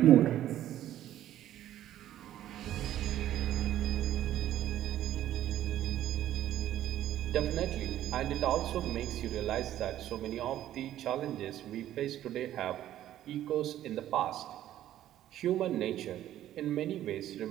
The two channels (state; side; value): quieter; left; 12.5 dB